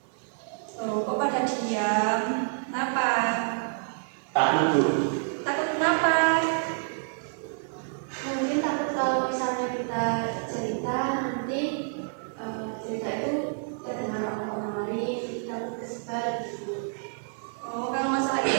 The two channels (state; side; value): silent; left; digital silence